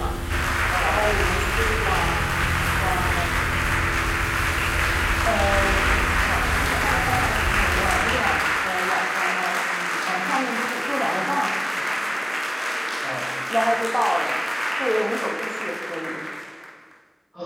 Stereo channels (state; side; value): identical; both; correlation 1.00